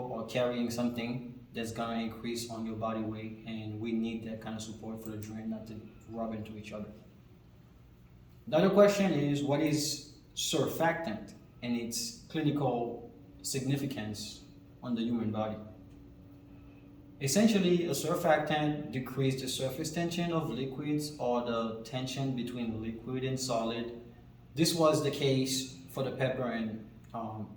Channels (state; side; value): identical; both; correlation 1.00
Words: or carrying something that's gonna increase on your body weight, and we need that kind of support for the joint not to rub into each other. The other question is, what is surfactant and its clinical significance on the human body? Essentially, a surfactant decreases the surface tension of liquids or the tension between liquid and solid. This was the case for the pepper and